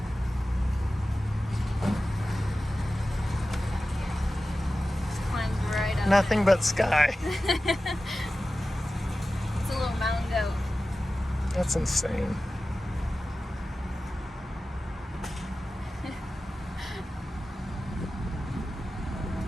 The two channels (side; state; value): both; normal; correlation 0.95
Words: Nothing but sky. It's a little mountain goat. That's insane.